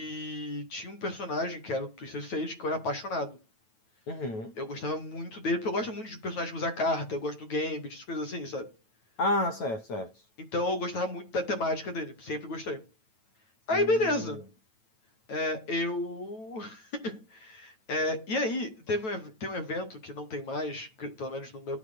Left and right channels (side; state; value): right; late; 9.1 ms